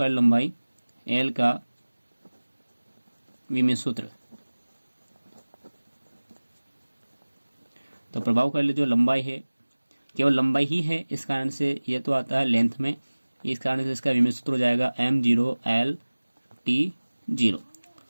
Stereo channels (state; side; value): inverted; both; correlation -1.00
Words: L का विमेय सूत्र। तो प्रभावकारी जो लंबाई है केवल लंबाई ही है, इस कारण से ये तो आता है लेंथ में, इस कारण से इसका विमेय सूत्र हो जाएगा m0 l t0।